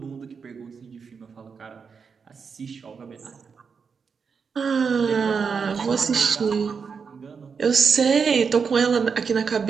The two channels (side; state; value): left; quieter; 5.8 dB